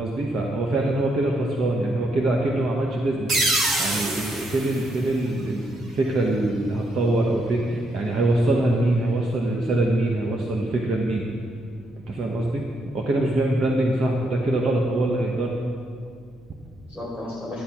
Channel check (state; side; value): noise; right; hum, 27 dB below the sound